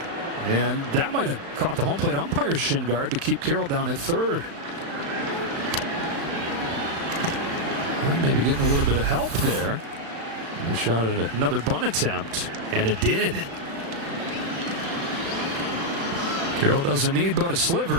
And that might have caught the home plate umpire's shin guard to keep Carroll down at third. Well, maybe getting a little bit of help there. He shot at another bunt attempt, and it did. Carroll doesn't need but a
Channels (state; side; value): late; left; 35 ms